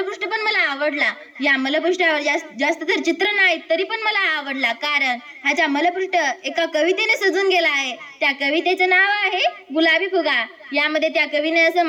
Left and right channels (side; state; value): both; identical; correlation 1.00